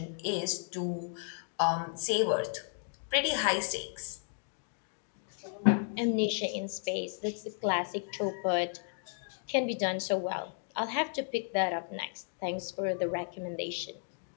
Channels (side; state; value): right; silent; 55 dB below the other